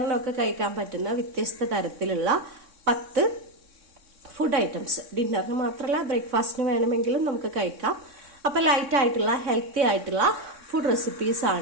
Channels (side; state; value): left; late; 3.6 ms